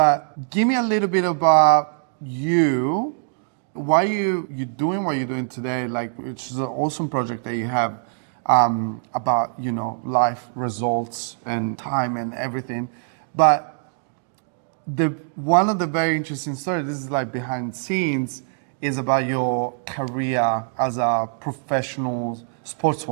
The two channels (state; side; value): silent; left; digital silence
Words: give me a little bit about you. Why you doing what you're doing today? Like, which is an awesome project that you have about life results and time and everything. But one of the very interesting stories. This is like behind the scenes. Is about your career as a professional